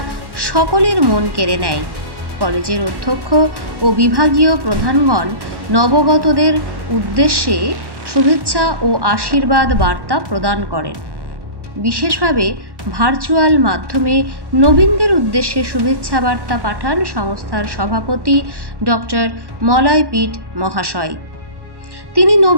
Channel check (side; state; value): left; late; 1.1 ms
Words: সকলের মন কেড়ে নেয়। কলেজের অধ্যক্ষ ও বিভাগীয় প্রধানগণ নবগতদের উদ্দেশ্যে শুভেচ্ছা ও আশীর্বাদ বার্তা প্রদান করেন। বিশেষভাবে ভার্চুয়াল মাধ্যমে নবীনদের উদ্দেশ্যে শুভেচ্ছা বার্তা পাঠান সংস্থার সভাপতি ডক্টর মলয় পিট মহাশয়। তিনি